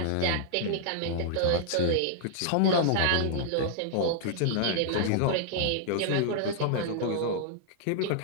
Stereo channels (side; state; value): both; different; correlation -0.01